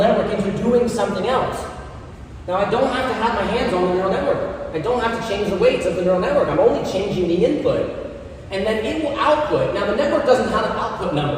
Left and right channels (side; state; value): both; identical; correlation 1.00